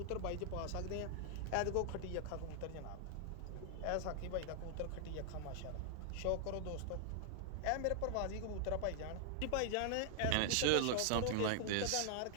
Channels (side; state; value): both; different; correlation -0.01